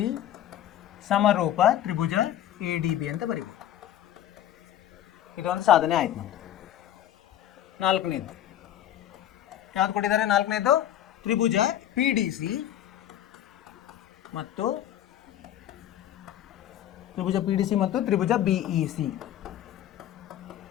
ಸಮರೂಪ ತ್ರಿಭುಜ ಎ ಡಿ ಬಿ ಅಂತ ಬರೀಬೋದು. ಇದೊಂದು ಸಾಧನೆ ಆಯ್ತು ನಮ್ಮದು. ನಾಲ್ಕನೇದು ಯಾವ್ದು ಕೊಟ್ಟಿದ್ದಾರೆ? ನಾಲ್ಕನೇದು ತ್ರಿಭುಜ ಪಿ ಡಿ ಸಿ ಮತ್ತು ತ್ರಿಭುಜ ಪಿ ಡಿ ಸಿ ಮತ್ತು ತ್ರಿಭುಜ ಬಿ ಇ ಸಿ.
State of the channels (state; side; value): quieter; right; 11.7 dB